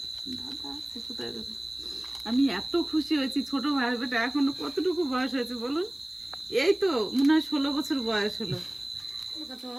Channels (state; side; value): noise; left; hiss, 27 dB below the sound